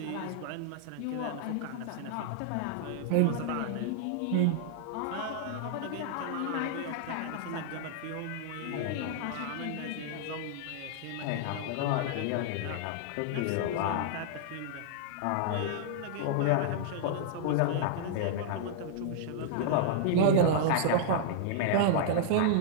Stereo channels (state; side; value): different; both; correlation -0.01